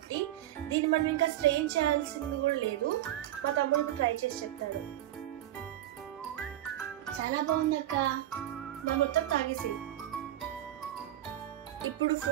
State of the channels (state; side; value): quieter; left; 13.4 dB